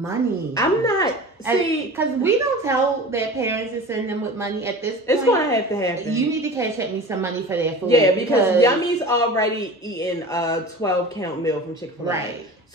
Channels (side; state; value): both; normal; correlation 0.36